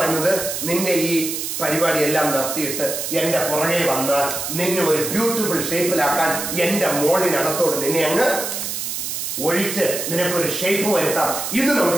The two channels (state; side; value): noise; right; hiss, 4 dB below the sound